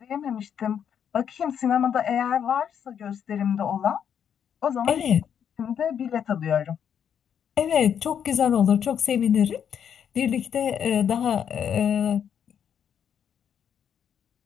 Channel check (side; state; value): right; quieter; 8.4 dB